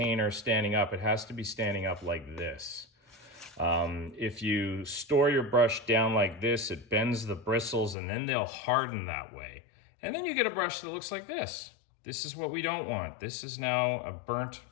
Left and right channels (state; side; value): drops out; right; at 8.0 s